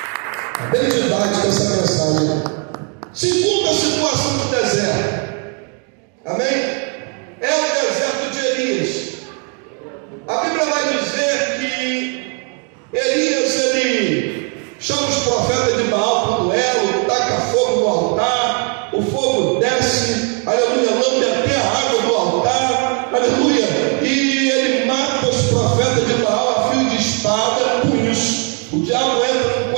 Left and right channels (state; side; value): quieter; left; 37.3 dB